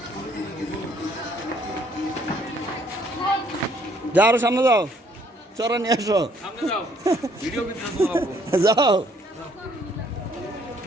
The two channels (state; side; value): normal; both; correlation 0.64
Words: যাও আরো সামনে যাও চড়া নিয়ে আসো যাও